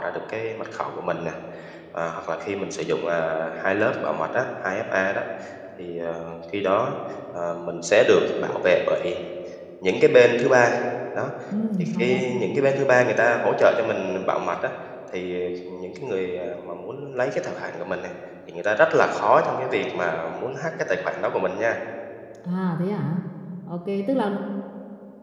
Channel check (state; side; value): identical; both; correlation 1.00